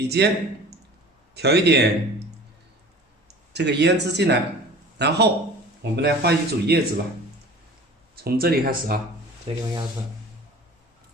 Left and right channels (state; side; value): normal; both; correlation 0.42